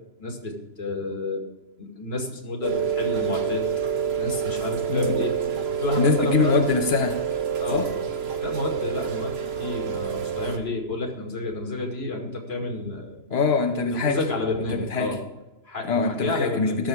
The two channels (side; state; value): left; late; 3.0 ms